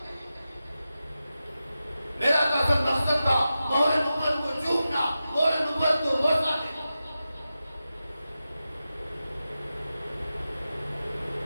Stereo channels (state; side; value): inverted; both; correlation -0.92